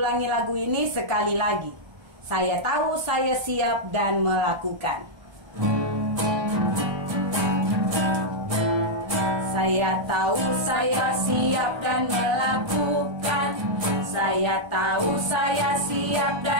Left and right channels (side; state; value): left; late; 1.3 ms